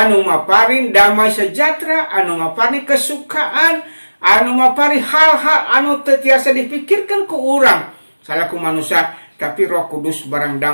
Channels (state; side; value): inverted; both; correlation -1.00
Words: maparin damai sejahtera, anu maparin kesukaan, anu maparin hal-hal anu teu tiasa dipikirkeun ku urang salaku manusia, tapi Roh Kudus barang